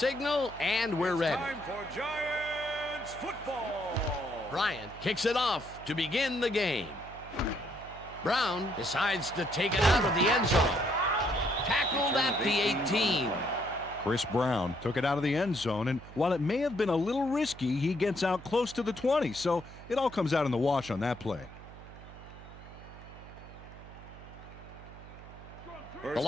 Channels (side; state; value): right; noise; hum, 16 dB below the sound